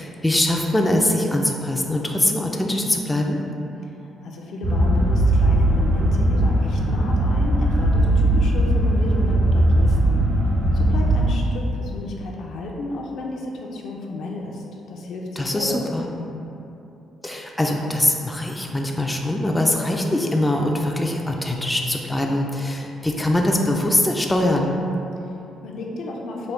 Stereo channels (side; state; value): both; normal; correlation 0.80